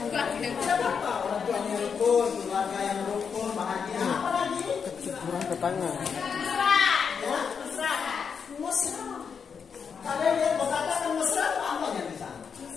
Tidak apa, orang tua yang rukun, keluarga yang rukun, bahagia. Apa lagi? Kecukuran tetangga. Ya? Mesra. Kalian lihat mau katakan mesra itu apa yang di sana?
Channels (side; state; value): right; quieter; 6.4 dB